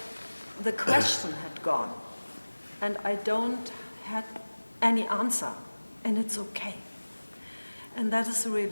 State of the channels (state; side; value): inverted; both; correlation -1.00